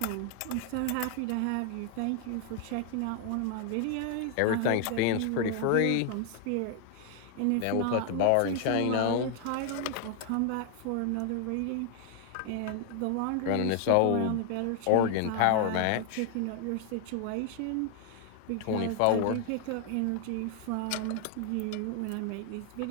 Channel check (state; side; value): different; both; correlation 0.00